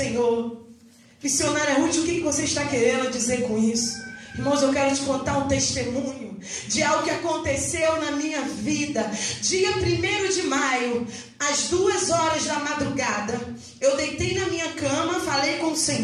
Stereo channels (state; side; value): identical; both; correlation 1.00